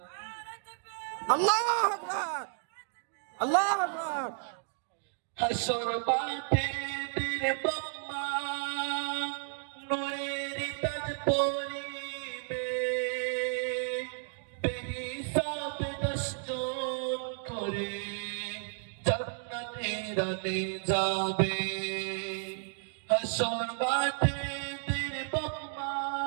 আল্লাহু আকবার, আল্লাহু আকবার। হাসর মাঠে বীর বাম্মা নূরের তাজ পরিবে। বেহিসাব 10 জন করে জান্নাতে রানে যাবে। হাসর মাঠে বীর বাম্মা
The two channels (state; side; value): silent; left; digital silence